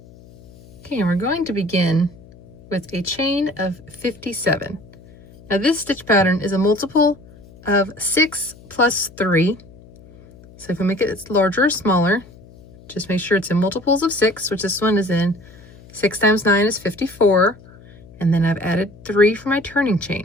Okay, and we're going to begin with a chain of 57. Now this stitch pattern is a multiple of 6 plus 3. So if we make it larger or smaller, just make sure it's in multiples of 6, which this one is in. 6 times 9 is 54. And then I've added 3 for my turning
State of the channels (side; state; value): left; noise; hum, 23 dB below the sound